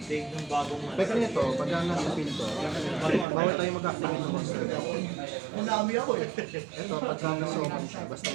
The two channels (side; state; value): left; drops out; at 3.2 s